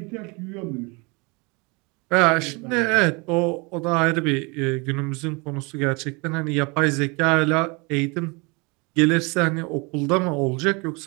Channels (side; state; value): left; quieter; 28.8 dB